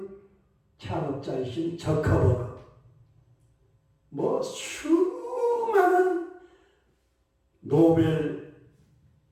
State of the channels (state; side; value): identical; both; correlation 1.00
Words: 창업자이신 저커버그, 수많은 노벨상을